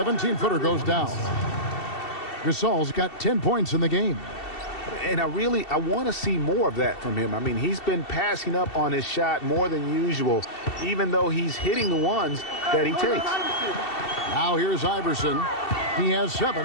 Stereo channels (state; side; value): late; right; 2.7 ms